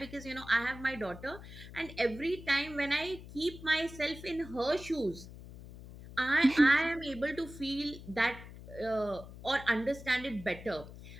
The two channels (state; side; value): noise; left; hum, 15 dB below the sound